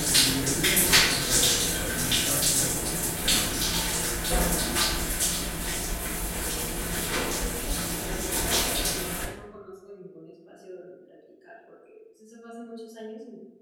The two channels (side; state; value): both; identical; correlation 1.00